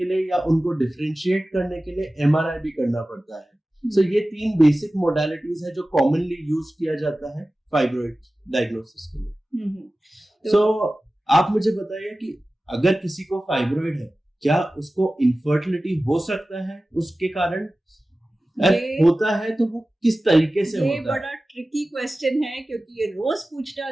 लिए या उनको डिफरेंशिएट करने के लिए एमआरआई भी करना पड़ता है। ये 3 बेसिक मोडालिटीज है जो कॉमनली यूज किया जाता है फाइब्रॉइड डायग्नोसिस के लिए। आप मुझे बताइए कि अगर किसी को फाइब्रॉइड है, क्या उसको इनफर्टिलिटी हो सकता है उसके कारण? होता है तो वो किस तरीके से होता है? ये बड़ा ट्रिकी क्वेश्चन है, क्योंकि ये रोज पूछा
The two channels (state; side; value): normal; both; correlation 0.96